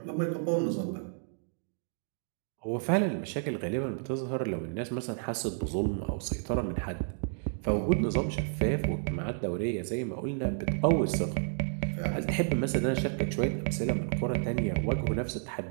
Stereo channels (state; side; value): silent; left; digital silence